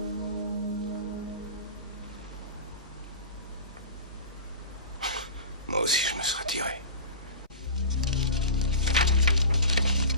Moi aussi, je me serais tiré.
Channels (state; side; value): inverted; both; correlation -0.34